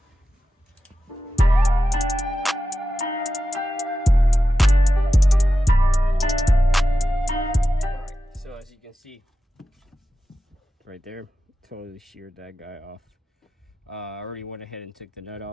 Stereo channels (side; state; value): both; normal; correlation 0.91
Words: All right, so as you can see, right there, totally sheared that guy off. I already went ahead and took the nut